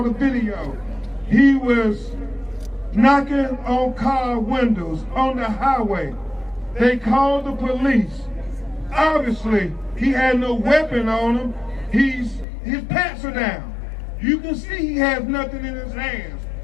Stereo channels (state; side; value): drops out; right; at 12.5 s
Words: the video. He was knocking on car windows on the highway. They called the police. Obviously, he had no weapon on him. His pants are down. You can see he has nothing in his hands.